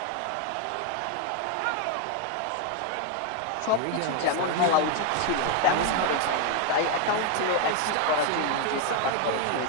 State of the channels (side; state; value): both; different; correlation 0.01